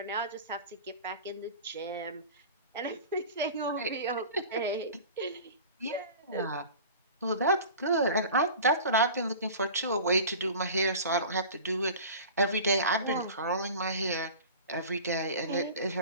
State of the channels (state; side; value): inverted; both; correlation -0.38